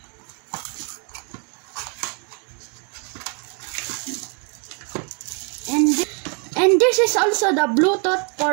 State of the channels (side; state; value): left; quieter; 36.9 dB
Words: And this is also the Bluetooth